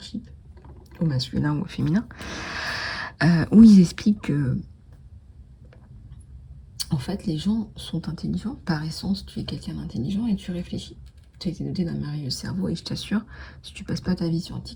au masculin ou au féminin, où ils expliquent que En fait, les gens sont intelligents. Par essence, tu es quelqu'un d'intelligent et tu réfléchis. Tu as été doté d'un merveilleux cerveau et je t'assure, si tu passes pas ta vie sur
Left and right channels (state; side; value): identical; both; correlation 1.00